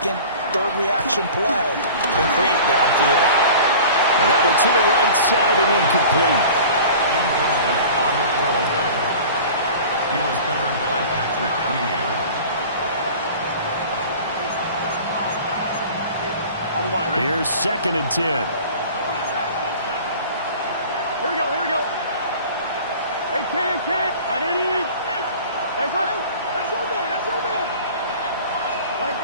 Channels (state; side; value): inverted; both; correlation -0.42